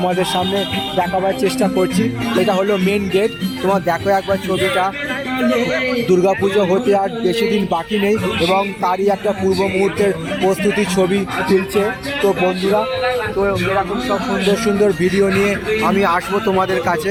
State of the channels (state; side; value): identical; both; correlation 1.00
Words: সামনে দেখাবার চেষ্টা করছি। এটা হলো মেন গেট। তোমার দেখো একবার ছবিটা। দুর্গাপুজো হতে আর বেশি দিন বাকি নেই এবং তারই একটা পূর্ব মুহূর্তের প্রস্তুতির ছবি তুলছে। তো বন্ধুরা, তো এরকম সব সুন্দর সুন্দর ভিডিও নিয়ে আমি আসবো তোমাদের কাছে।